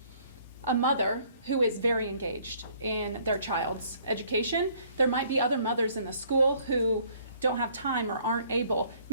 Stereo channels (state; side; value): inverted; both; correlation -0.61